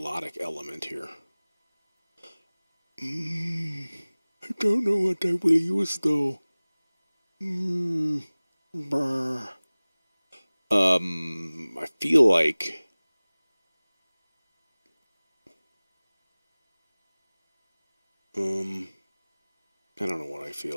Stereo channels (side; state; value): both; inverted; correlation -1.00